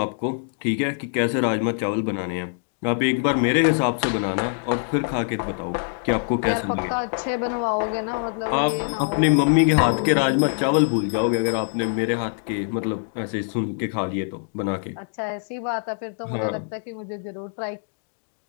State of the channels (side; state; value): right; silent; digital silence